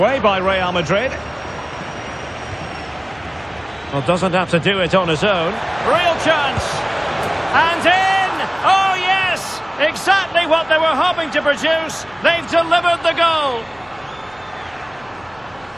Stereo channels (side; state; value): right; noise; hum, 28 dB below the sound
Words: by Real Madrid. Well, doesn't have to do it on his own. Real chance. And in! Oh, yes! Exactly what they were hoping to produce. They've delivered the goal.